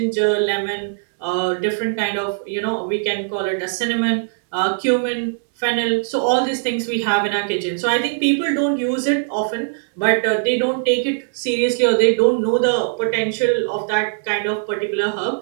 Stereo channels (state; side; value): silent; left; digital silence